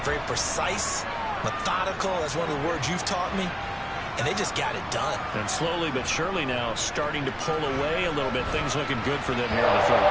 Very precise, methodical. That's one of the words you've taught me. And they just got it done. And slowly but surely now starting to pull away a little bit. Things looking good for them here in the third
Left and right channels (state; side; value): identical; both; correlation 1.00